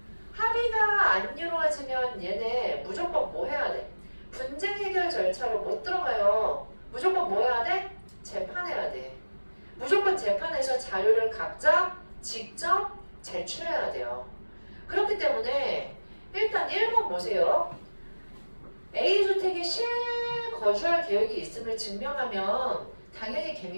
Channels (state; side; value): inverted; both; correlation -1.00